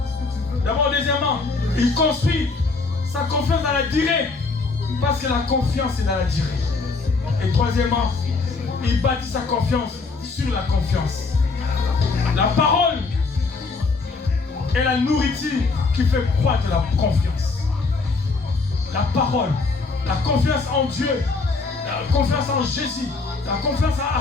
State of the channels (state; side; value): quieter; right; 4.0 dB